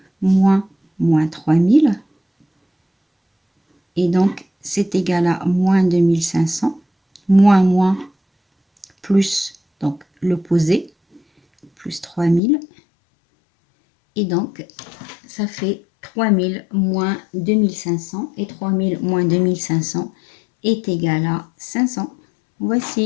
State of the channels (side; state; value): right; drops out; at 12.4 s